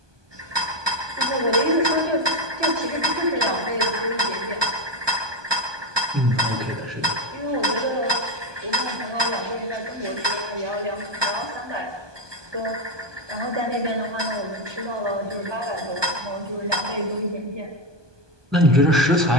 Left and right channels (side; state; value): left; late; 1.2 ms